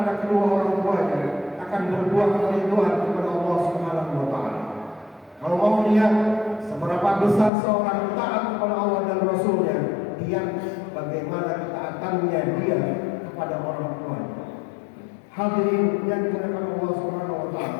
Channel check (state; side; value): drops out; right; at 7.5 s